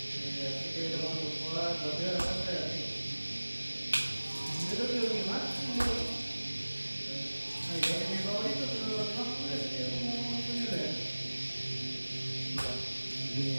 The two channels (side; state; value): both; inverted; correlation -1.00